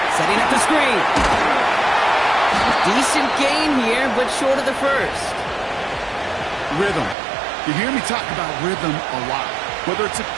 Setting up the screen. Decent gain here, but short of the first. Rhythm. You hear me talk about rhythm a lot. Whether it's a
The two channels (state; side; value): drops out; left; at 7.2 s